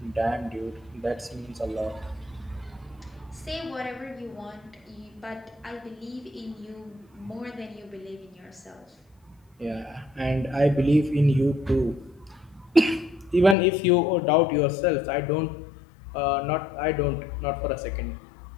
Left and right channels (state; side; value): drops out; right; at 13.6 s